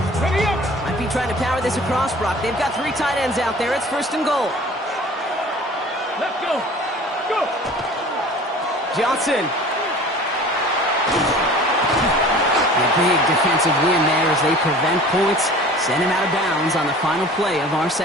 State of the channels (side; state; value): both; normal; correlation 0.44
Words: Ready up. Might be trying to power this across, Brock. They've got 3 tight ends out there. It's 1st and goal. Let's go. Go. Johnson. A big defensive win there as they prevent points, send him out of bounds on the final play of our